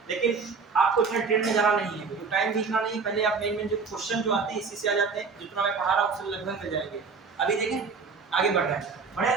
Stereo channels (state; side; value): quieter; left; 5.0 dB